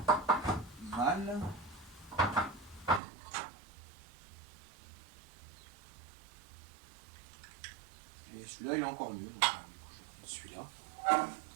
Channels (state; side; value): drops out; left; at 3.0 s